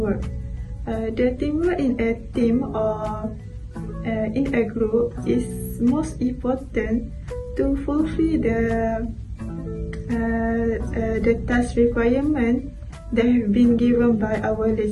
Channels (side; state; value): both; identical; correlation 1.00